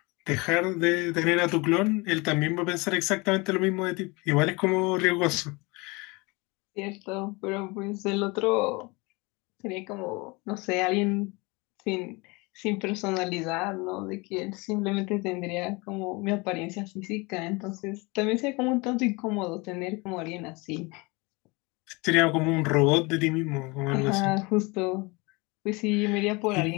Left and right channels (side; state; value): right; quieter; 26.3 dB